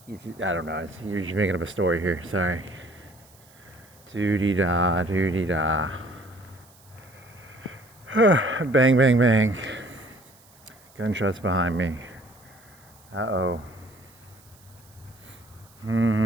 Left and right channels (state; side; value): noise; right; hiss, 27 dB below the sound